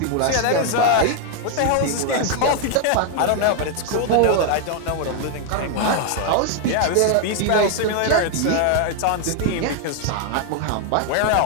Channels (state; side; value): different; both; correlation 0.00